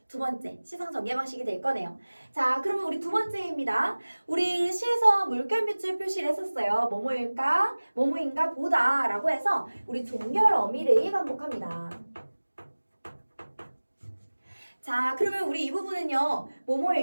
두 번째 시상 전개 방식이 될 거네요. 자, 그러면 우리 두 번째입니다. 우리 시에서 물결 밑줄 표시를 했었어요. 뭐뭐일까? 뭐뭐인가 보다 라고 해서 우리 종결 어미를 반복합니다. 자, 그러면 우리 이 부분은요.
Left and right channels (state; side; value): inverted; both; correlation -1.00